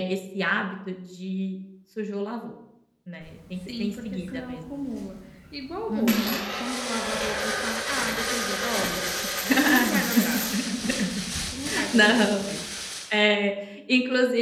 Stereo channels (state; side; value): identical; both; correlation 1.00